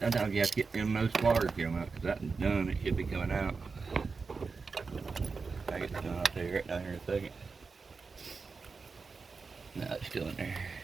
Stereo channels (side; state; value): left; quieter; 4.6 dB